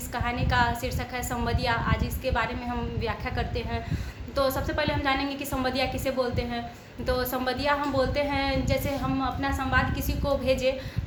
कहानी का शीर्षक है संवदिया। आज इसके बारे में हम व्याख्या करते हैं। तो सबसे पहले हम जानेंगे कि संवदिया किसे बोलते हैं। तो संवदिया हम बोलते हैं जैसे हम अपना संवाद किसी को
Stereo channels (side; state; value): both; identical; correlation 1.00